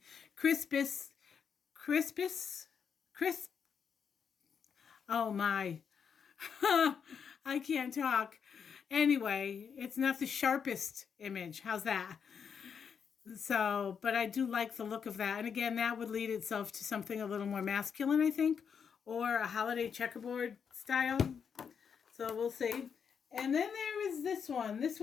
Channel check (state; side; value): quieter; right; 6.9 dB